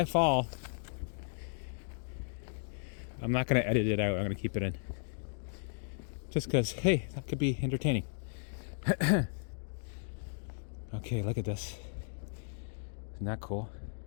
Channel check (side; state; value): right; silent; digital silence